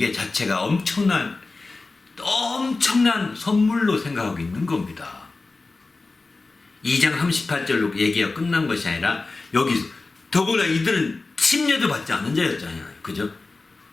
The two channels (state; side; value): quieter; right; 3.6 dB